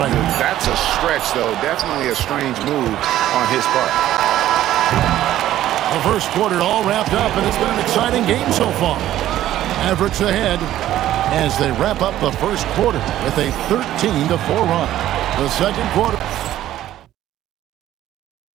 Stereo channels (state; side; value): quieter; left; 13.1 dB